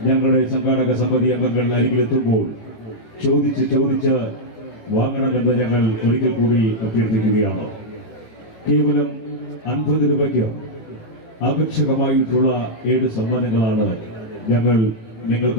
ഞങ്ങളുടെ സംഘാടക സമിതി അംഗങ്ങൾ അരികിലെത്തുമ്പോൾ ചോദിച്ച് വാങ്ങണമെന്ന് ഞങ്ങൾ ഒരിക്കൽ കൂടി അഭ്യർത്ഥിക്കുകയാണ്. കേവലം 50 രൂപയ്ക്ക് ആകർഷകമായിട്ടുള്ള 7 സമ്മാനങ്ങളാണ് ഞങ്ങൾ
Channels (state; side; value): late; right; 18 ms